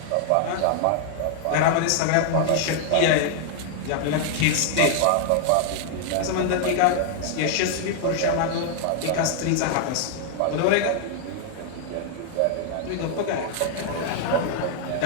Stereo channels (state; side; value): different; both; correlation 0.00